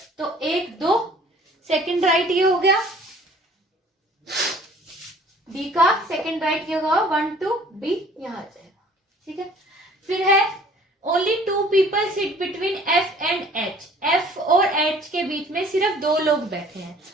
तो 1 2 सेकंड राइट ये हो गया, बी का सेकंड राइट ये होगा 1 2, बी यहाँ आ जाएगा। ठीक है, फिर है only 2 people sit between F and H. F और एच के बीच में सिर्फ 2 लोग बैठे हैं।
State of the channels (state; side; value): normal; both; correlation 0.53